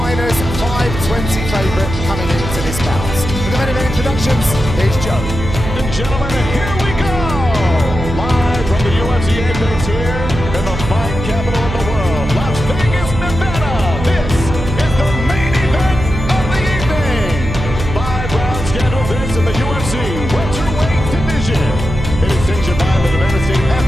520 favourite coming into this bout. With the main event introductions, here's Joe. And gentlemen, here we go! Live from the UFC Apex here in the fight capital of the world, Las Vegas, Nevada. This is the main event of the evening. 5-round schedule this in the UFC welterweight division. It is sanctioned by the Nevada State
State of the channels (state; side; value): noise; right; hum, 6 dB below the sound